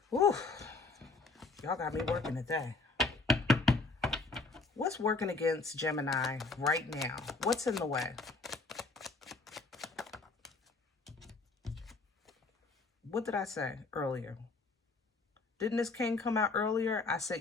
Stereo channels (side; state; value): right; quieter; 3.7 dB